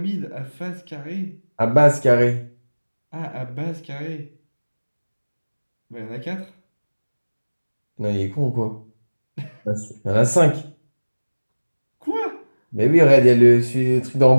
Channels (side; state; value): both; inverted; correlation -1.00